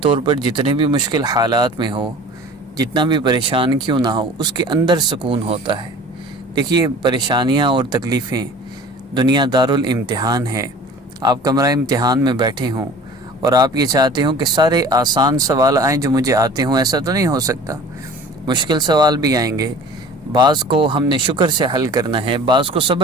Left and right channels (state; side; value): normal; both; correlation 0.43